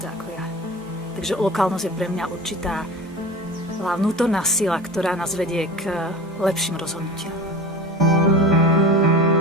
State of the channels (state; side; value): normal; both; correlation 0.34